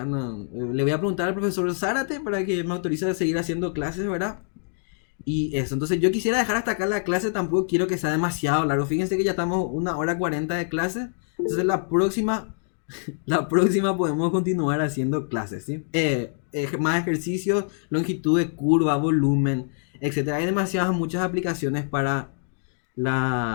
Le voy a preguntar al profesor Zárate para que me autorice a seguir haciendo clases, ¿verdad? Y eso, entonces yo quisiera dejar hasta acá la clase, tampoco quiero que sea demasiado largo. Fíjense que ya estamos 1 hora 40 de clase. Entonces la próxima podemos continuar haciendo clases, ¿sí? Más ejercicios, longitud de curva, volumen, etcétera. Hay demasiadas, muchas aplicaciones para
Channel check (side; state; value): right; silent; digital silence